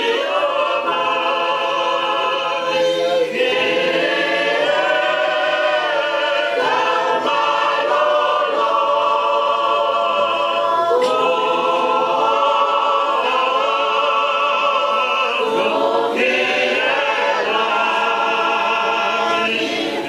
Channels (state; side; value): identical; both; correlation 1.00